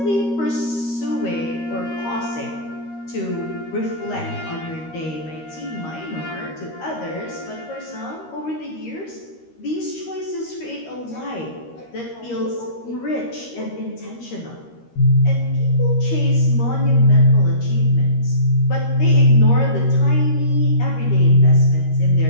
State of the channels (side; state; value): right; late; 13 ms